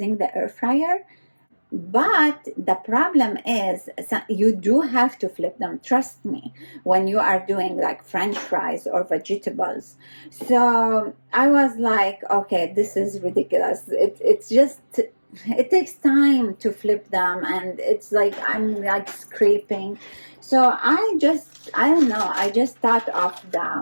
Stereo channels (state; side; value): inverted; both; correlation -1.00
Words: the air fryer. But the problem is, you do have to flip them, trust me, when you are doing like French fries or vegetables. So I was like, okay, this is ridiculous. It's just, it takes time to flip them, and it's like I'm like scraping. So I don't know, I just thought of